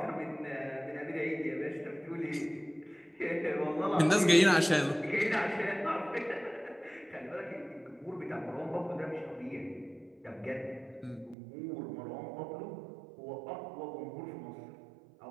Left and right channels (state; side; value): drops out; left; at 11.4 s